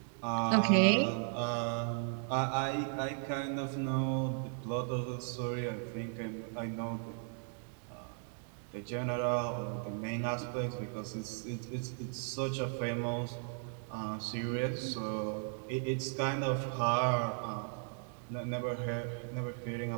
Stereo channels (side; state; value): left; silent; 54 dB below the other